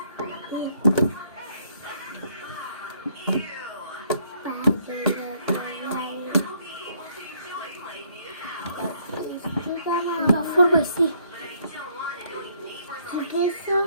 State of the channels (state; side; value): inverted; both; correlation -0.67